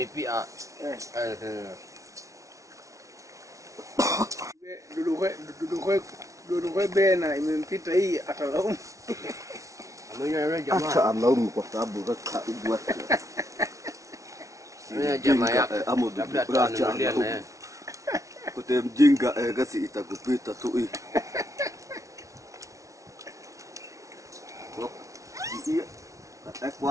Dudu bena imempita hii atalaumu. Acha alaumu kwa sababu raka ubwa. Jamaa yako Amudu labda tuanulia na yeye. Kote mjinga gasi itakupita tu hii. Iya.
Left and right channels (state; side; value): late; left; 0.15 ms